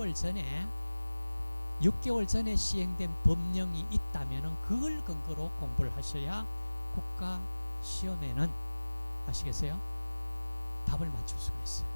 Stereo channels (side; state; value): both; inverted; correlation -1.00